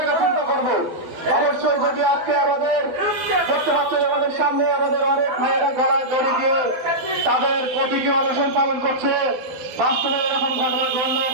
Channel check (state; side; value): late; left; 12 ms